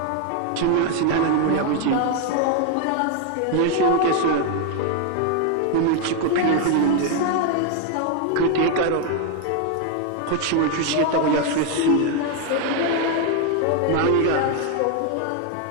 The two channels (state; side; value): different; both; correlation 0.01